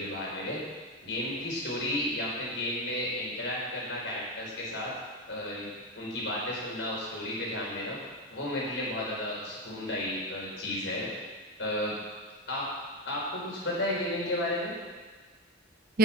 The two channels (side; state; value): both; normal; correlation 0.10